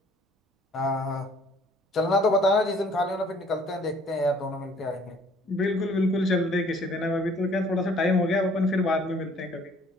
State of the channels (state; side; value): normal; both; correlation 0.58